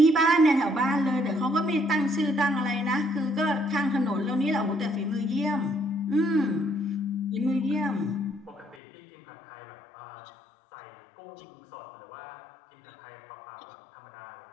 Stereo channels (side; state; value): right; drops out; at 8.8 s